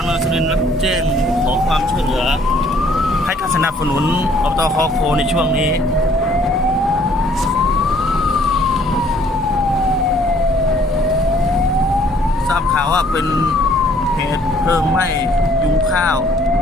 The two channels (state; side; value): normal; both; correlation 0.61